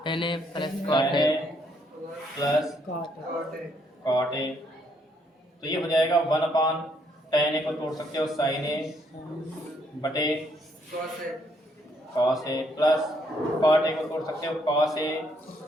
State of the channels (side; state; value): both; normal; correlation 0.71